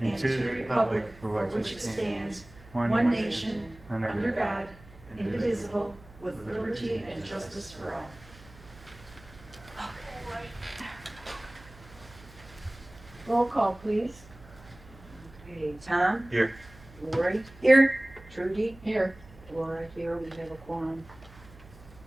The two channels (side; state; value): right; noise; hum, 21 dB below the sound